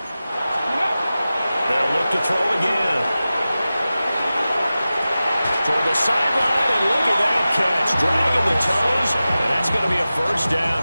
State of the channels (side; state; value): both; inverted; correlation -0.95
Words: They'll look to throw again. Toward the sideline, and look at that catch. Dragging the toes, and that's going to be a first down.